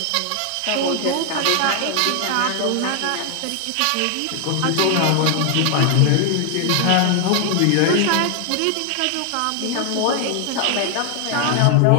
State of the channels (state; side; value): different; both; correlation 0.00